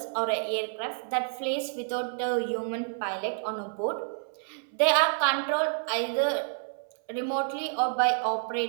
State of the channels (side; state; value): left; silent; 59 dB below the other